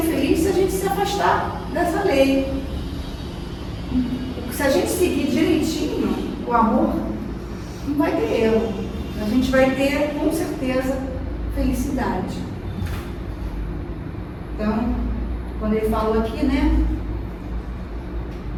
se a gente se afastar dessa lei. Se a gente seguir direitinho o amor, não vai ter erro. A gente vai ter, com certeza, felicidade. Então, quando ele falou aqui, né,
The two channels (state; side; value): identical; both; correlation 1.00